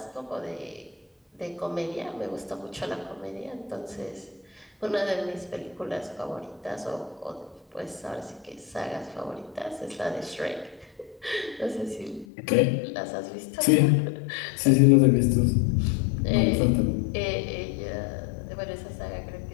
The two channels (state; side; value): drops out; right; at 12.2 s